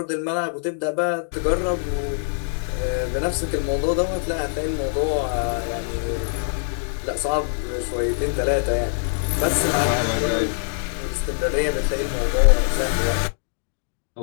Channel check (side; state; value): right; silent; digital silence